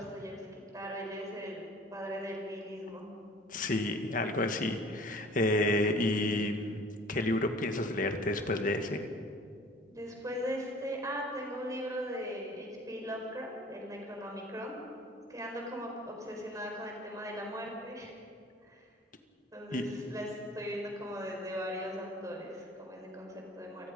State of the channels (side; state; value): both; normal; correlation 0.48